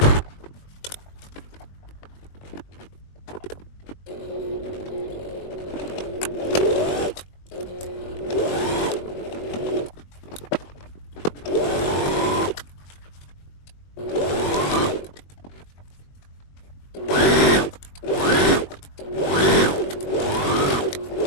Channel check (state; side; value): late; right; 21 ms